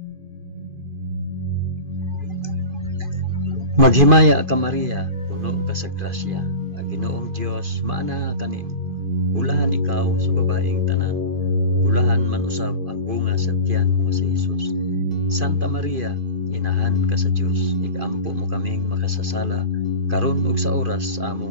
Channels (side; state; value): left; late; 2.5 ms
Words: Maghimaya ka Maria, puno ka sa grasya, ang Ginoong Dios maanaa kanimo. Bulahan ikaw sa babaeng tanan, bulahan man usab ang bunga sa tiyan mo si Jesus. Santa Maria, inahan ka sa Dios, igampo mo kaming makasasala, karon ug sa oras sa